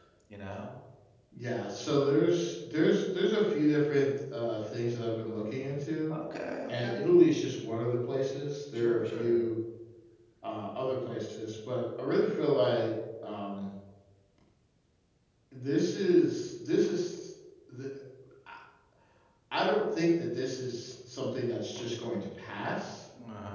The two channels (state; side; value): identical; both; correlation 1.00